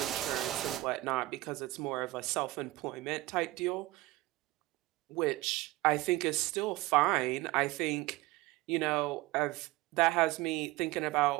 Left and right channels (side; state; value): left; quieter; 19.4 dB